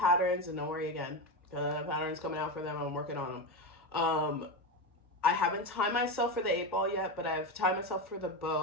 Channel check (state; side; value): normal; both; correlation 0.16